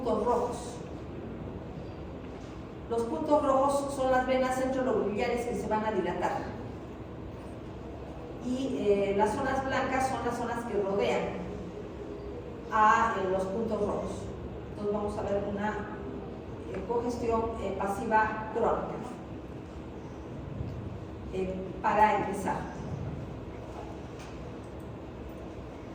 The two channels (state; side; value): identical; both; correlation 1.00